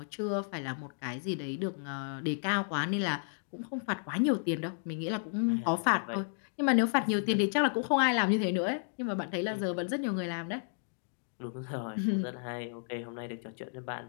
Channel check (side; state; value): right; silent; digital silence